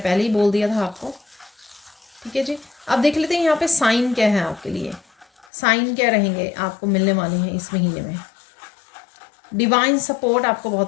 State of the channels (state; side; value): drops out; right; at 5.5 s